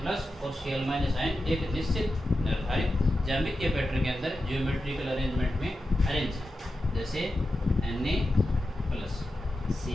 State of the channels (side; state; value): both; normal; correlation 0.91